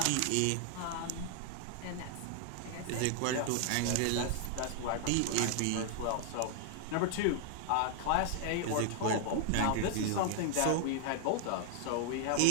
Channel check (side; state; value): both; different; correlation 0.00